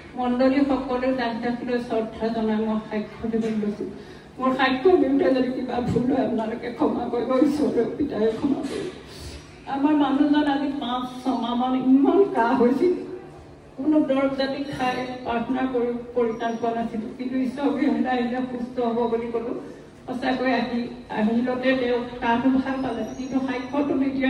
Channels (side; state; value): both; identical; correlation 1.00